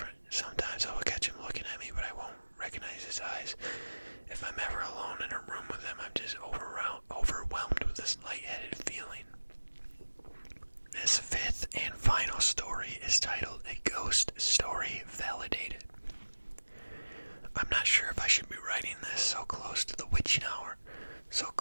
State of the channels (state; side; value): inverted; both; correlation -1.00